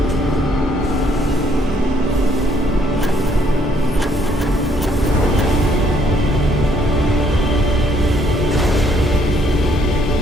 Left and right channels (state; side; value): normal; both; correlation 0.68